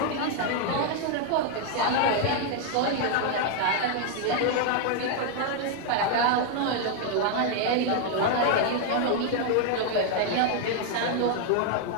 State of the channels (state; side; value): different; both; correlation 0.00